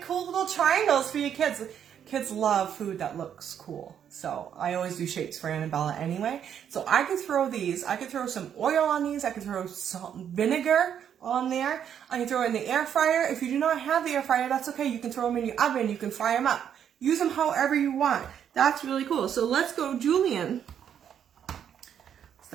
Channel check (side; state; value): left; quieter; 8.9 dB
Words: cool little triangles for your kids. Kids love food that looks cool. So I always do shapes for Annabella anyway. So I could throw these, I could throw some oil on these, I could throw salt and vinegar on there. I can throw it in the air fryer. If you do not have the air fryer, that's okay. You can throw them in your oven, you can fry them up. Use them however you want. That's really cool. So let's go Julian